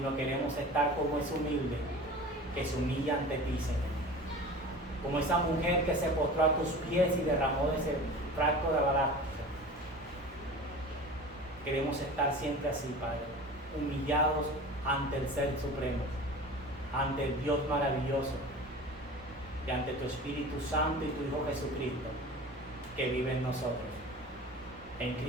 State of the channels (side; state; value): both; normal; correlation 0.37